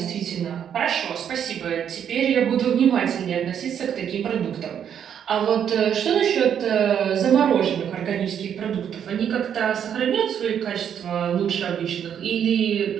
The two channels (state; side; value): quieter; left; 8.7 dB